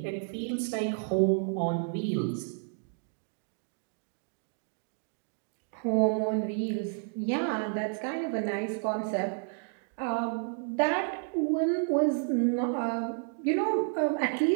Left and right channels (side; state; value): left; silent; 57 dB below the other